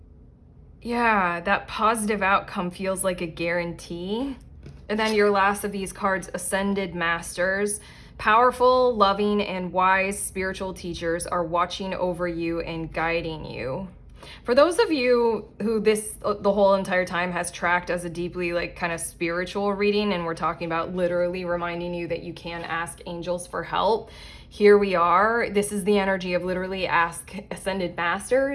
Yeah, that positive outcome feels like a guarantee. And then your last of these cards, Ascended Masters. Powerful, loving, and wise spiritual teachers are watching over you and guiding you. For those of you who the whole entire time has tracked as a deeply like kind of spiritual reading, and we're talking about literally reminding you that you can ask angels for help, here we are. This is the energy of literally ask Ascended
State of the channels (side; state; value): both; identical; correlation 1.00